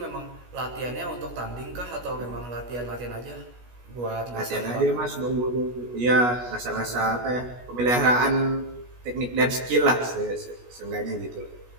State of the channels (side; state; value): left; late; 16 ms